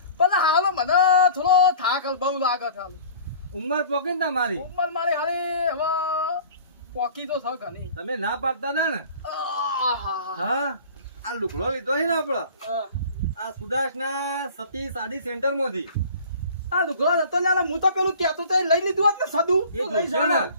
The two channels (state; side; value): inverted; both; correlation -0.45